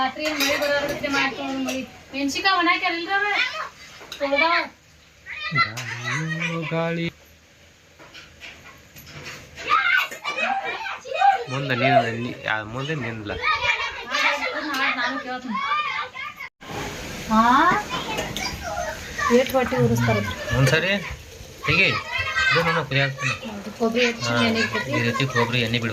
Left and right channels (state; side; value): identical; both; correlation 1.00